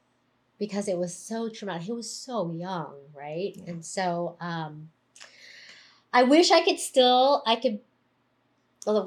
Because it was so traumatic. He was so young, right? Yeah. And so I wish I could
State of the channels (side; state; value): both; identical; correlation 1.00